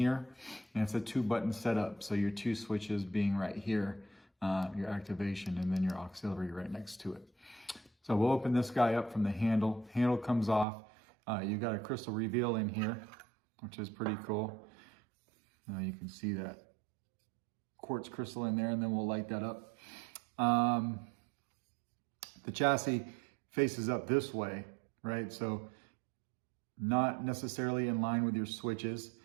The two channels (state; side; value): drops out; left; at 10.7 s